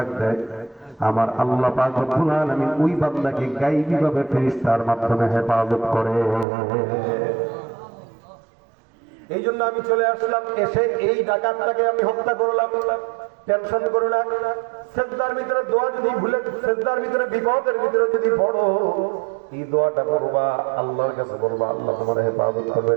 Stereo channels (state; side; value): drops out; left; at 6.5 s